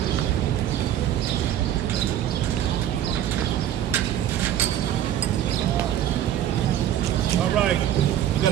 All right, we're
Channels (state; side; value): quieter; left; 11.3 dB